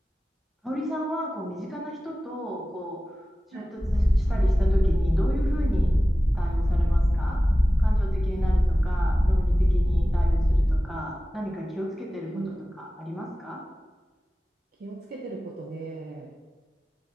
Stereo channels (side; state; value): both; normal; correlation 0.96